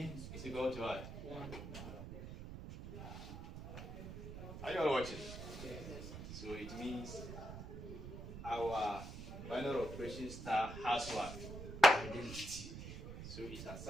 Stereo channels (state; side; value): noise; right; rumble, 9 dB below the sound